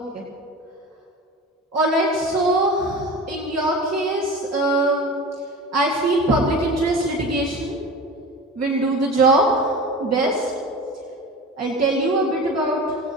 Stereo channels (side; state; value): both; normal; correlation 0.33